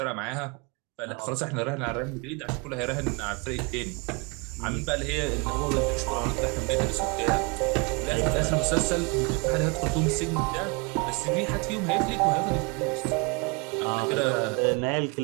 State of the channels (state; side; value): quieter; left; 30.8 dB